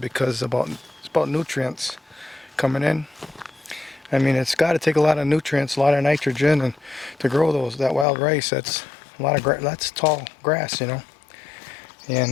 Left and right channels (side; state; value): right; drops out; at 8.1 s